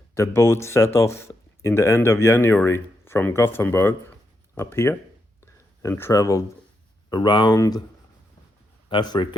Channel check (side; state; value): both; normal; correlation 0.83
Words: The boat set off in the end of January from Gothenburg up here and traveled around